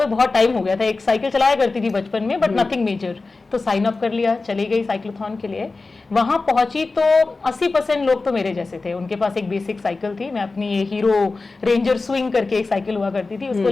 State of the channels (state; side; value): quieter; right; 3.7 dB